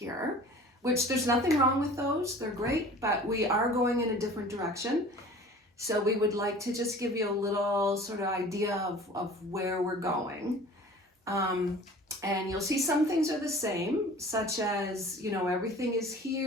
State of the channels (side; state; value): both; normal; correlation 0.44